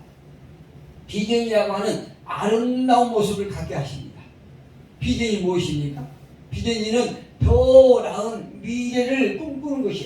비전이라고 하는 아름다운 모습을 갖게 하십니다. 비전이 무엇입니까? 비전이는 더 나은 미래를 꿈꾸는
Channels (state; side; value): identical; both; correlation 1.00